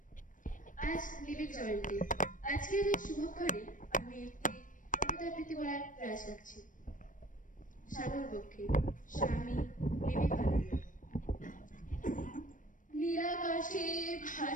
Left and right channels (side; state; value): right; late; 0.38 ms